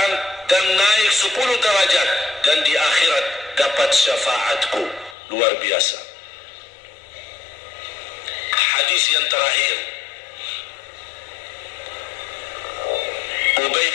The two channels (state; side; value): drops out; right; at 5.2 s